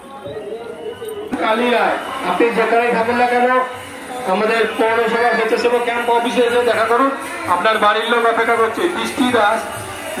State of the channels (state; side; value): identical; both; correlation 1.00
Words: কালিয়ায় আপনি যেখানে থাকুন না কেন আমাদের পৌরসভা স্বেচ্ছাসেবক ক্যাম্প অফিসে এসে দেখা করুন। আপনার বাড়ির লোক অপেক্ষা করছে। বৃষ্টি দাস